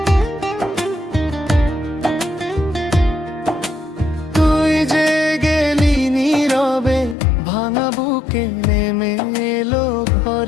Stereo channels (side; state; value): right; drops out; at 7.2 s